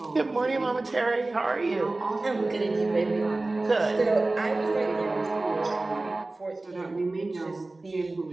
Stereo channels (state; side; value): quieter; left; 3.0 dB